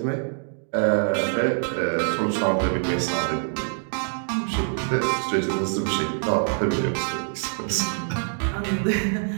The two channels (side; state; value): left; silent; digital silence